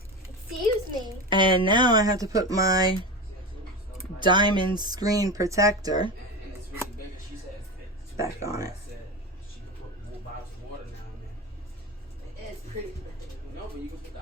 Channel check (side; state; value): both; normal; correlation 0.24